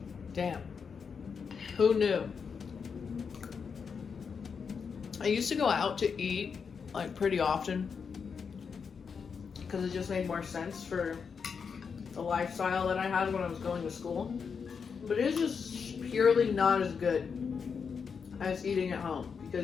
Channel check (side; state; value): right; quieter; 6.0 dB